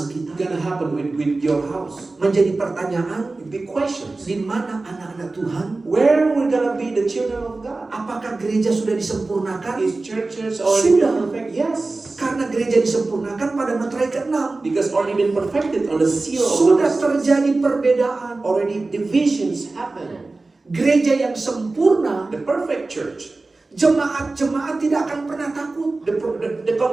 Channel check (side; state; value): left; quieter; 3.4 dB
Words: kita? gonna happen with your house? Menjadi pertanyaan, Big questions. di mana anak-anak Tuhan? Where we're gonna be the children of God? Apakah gereja sudah disempurnakan? Is churches already Sudah. been perfect? Yes. Karena gereja disempurnakan pada materai ke-6. Because already been perfected on the seal of Sudah God. terjadi perbedaan. Already divisions happen. Gereja yang sempurna, The perfect church. jemaat-jemaat tidak akan pernah takut. The